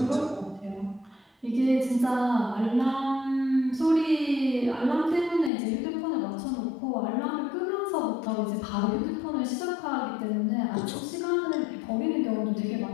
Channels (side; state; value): right; drops out; at 5.5 s